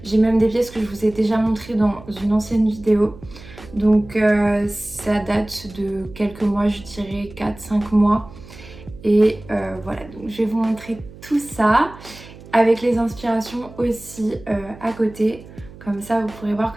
J'ai même des pièces que je vous ai déjà montrées dans une ancienne vidéo. Donc ça date de quelques mois, je dirais 4-5 mois. Et voilà, donc je vais vous montrer tout ça avec les inspirations aussi à côté. Comme ça, vous pourrez voir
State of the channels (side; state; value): right; noise; hum, 19 dB below the sound